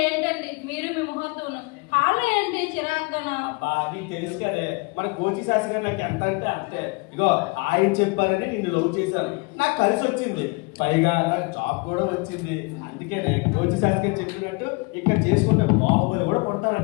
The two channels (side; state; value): right; quieter; 28.4 dB